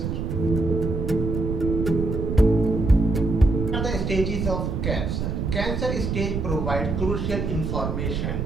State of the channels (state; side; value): noise; right; rumble, 2 dB below the sound